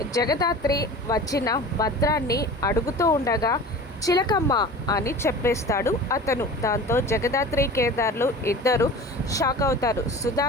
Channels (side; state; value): both; normal; correlation 0.37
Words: జగదాత్రి వచ్చిన భద్రాన్ని అడుగుతూ ఉండగా, చిలకమ్మ అని చెప్పేస్తాడు అతను. దాంతో జగదాత్రి కేదార్లు ఇద్దరు షాక్ అవుతారు.